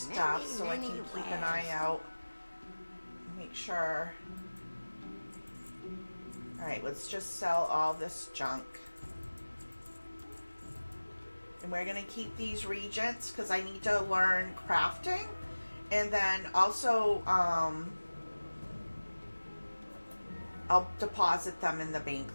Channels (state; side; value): inverted; both; correlation -1.00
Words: so I can keep an eye out. Make sure. Alright, let's just sell all this junk. And we're going to keep these regents because I need to learn crafting. And then also, I'll deposit them in the